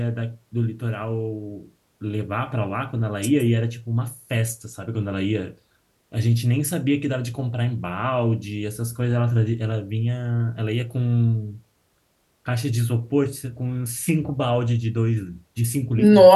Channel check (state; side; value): identical; both; correlation 1.00